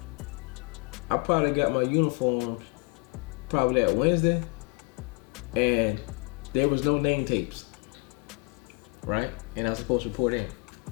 I probably got my uniforms probably that Wednesday, and there was no name tapes, right? And I was supposed to report in.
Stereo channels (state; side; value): quieter; right; 31.7 dB